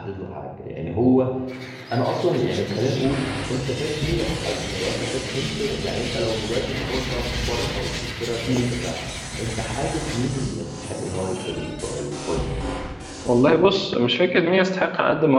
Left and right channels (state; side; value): identical; both; correlation 1.00